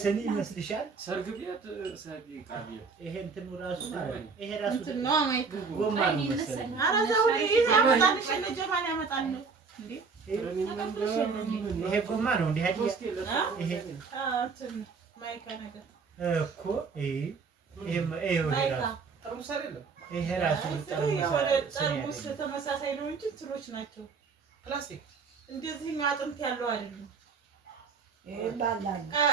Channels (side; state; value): left; quieter; 5.1 dB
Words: ይመስልሻል? ሰርግ ቤት ይሄ እንትኑ ራሱ ይሄ ራሱ ጎማ ነው መሰለኝ። ይሄ ጎማ ነው እንዴ? ይሄ እኮ ይሄ ራሱ ጠርሙስ ተመሳሳይ ነው እንጂ እንትኖች ናቸው ፕላስቲክ። እንደዚህ አጥንት ያለው አይደለም።